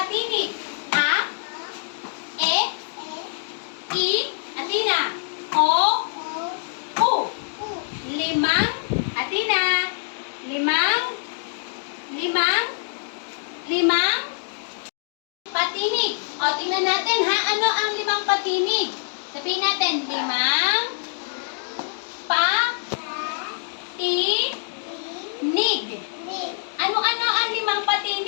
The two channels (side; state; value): right; silent; digital silence